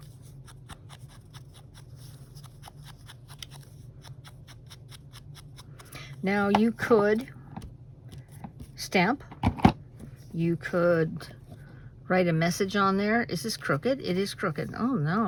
Now you could stamp, you could write a message on there. Is this crooked? It is crooked. Oh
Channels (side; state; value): both; identical; correlation 1.00